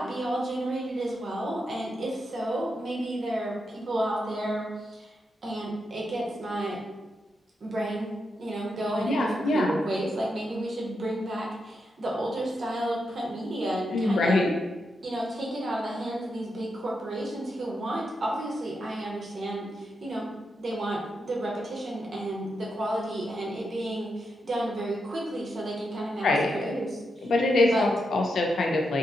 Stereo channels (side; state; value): both; normal; correlation 0.84